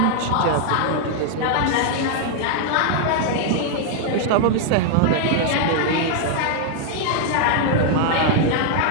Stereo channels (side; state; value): both; different; correlation 0.00